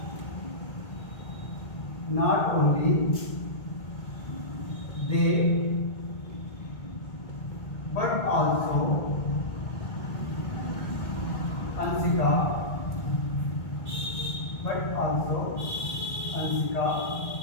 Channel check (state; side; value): late; right; 2.0 ms